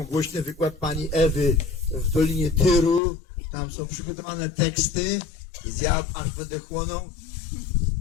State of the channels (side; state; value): right; drops out; at 3.0 s